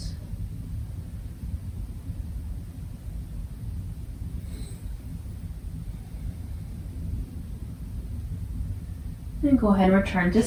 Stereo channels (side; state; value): both; identical; correlation 1.00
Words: And go ahead and return to